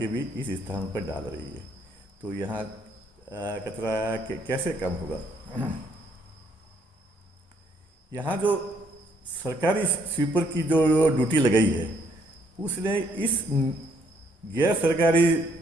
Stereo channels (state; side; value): normal; both; correlation 0.69